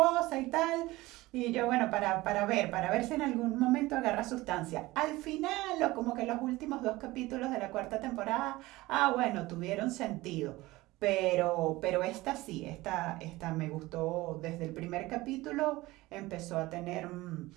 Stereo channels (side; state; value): left; quieter; 19.4 dB